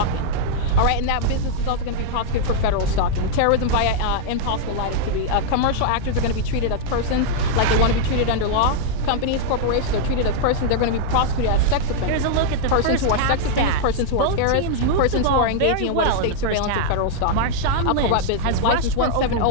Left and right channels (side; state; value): both; different; correlation -0.01